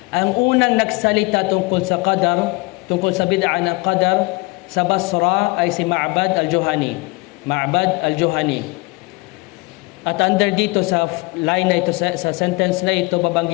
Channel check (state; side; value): quieter; right; 25.9 dB